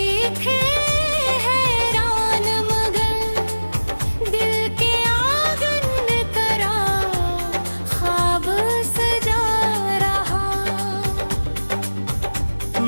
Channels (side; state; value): both; inverted; correlation -1.00